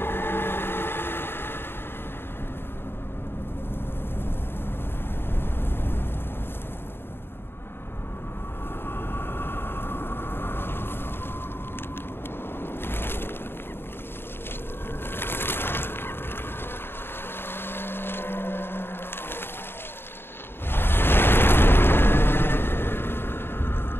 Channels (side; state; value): right; late; 0.11 ms